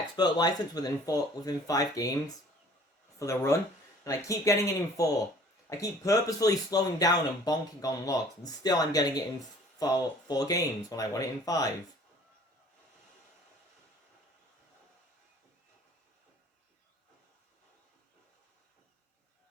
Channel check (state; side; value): normal; both; correlation 0.51